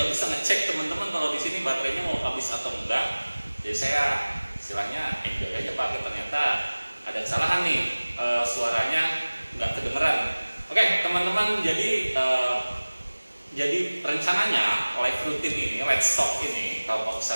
bisa ngecek teman-teman kalau di sini baterainya mau habis atau enggak. Jadi saya istilahnya enjoy aja pakai. Ternyata ada kesalahan nih, suaranya nggak kedengeran. Oke, teman-teman, jadi rencananya live rutin ini, Let's Talk ini, Kelompok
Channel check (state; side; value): inverted; both; correlation -1.00